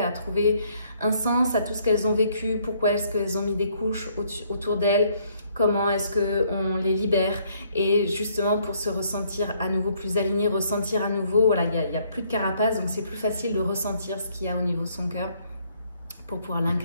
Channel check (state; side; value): inverted; both; correlation -0.67